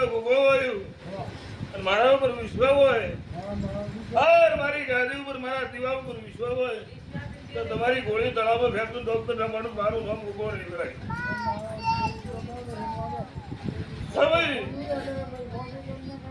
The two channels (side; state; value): both; identical; correlation 1.00